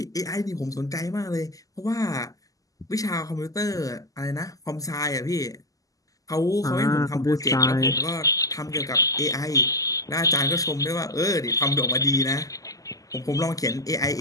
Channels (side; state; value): right; late; 0.17 ms